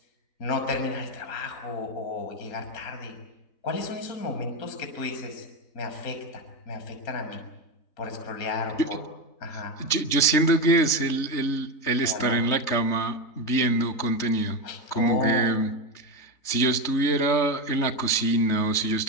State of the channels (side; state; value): right; late; 3.3 ms